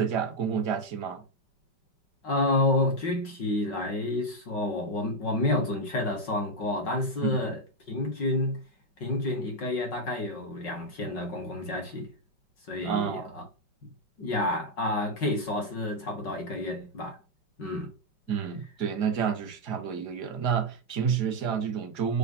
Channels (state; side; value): late; right; 5.4 ms